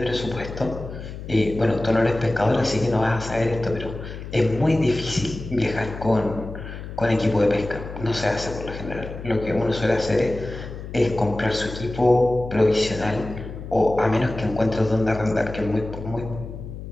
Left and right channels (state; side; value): noise; left; hum, 10 dB below the sound